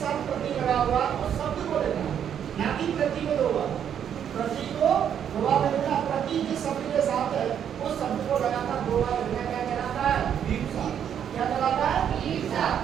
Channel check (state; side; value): quieter; left; 8.9 dB